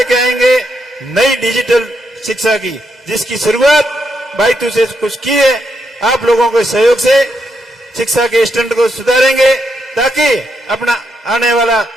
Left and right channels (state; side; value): normal; both; correlation 0.80